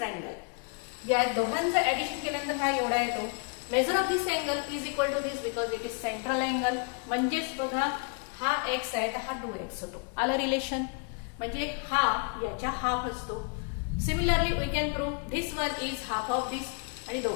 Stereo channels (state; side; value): quieter; right; 37.1 dB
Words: या दोघांचं ऍडिशन केल्यानंतर हा एवढा येतो. Measure of this angle is equal to this because it is central angle. म्हणजेच बघा हा x आहे तर हा 2x होतो. आलं रिलेशन. म्हणजे हा याच्या हाफ असतो. Similarly we can prove this one is half of this आणि